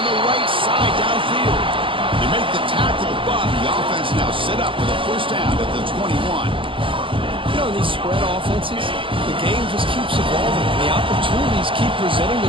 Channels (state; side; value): late; left; 0.25 ms